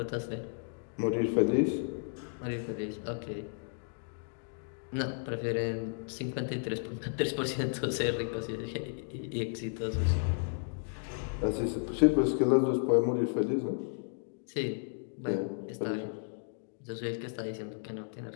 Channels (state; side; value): silent; right; digital silence